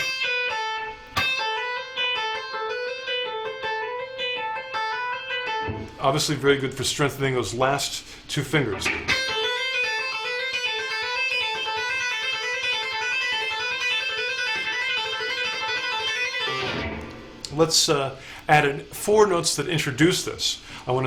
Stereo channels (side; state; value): both; identical; correlation 1.00